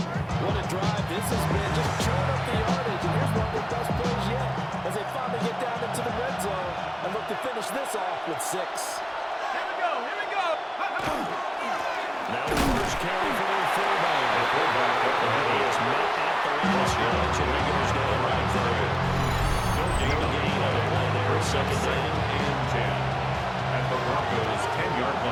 What a drive this has been. Just chewing up the yardage. And here's one of their best plays yet as they finally get down into the red zone and look to finish this off with 6. Now the first carry for their fullback. The fullback up the head is met at the line of scrimmage, and Regulars got it right there. No gain on the play there. 2nd and 10 at the Broncos' 10-yard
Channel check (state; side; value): identical; both; correlation 1.00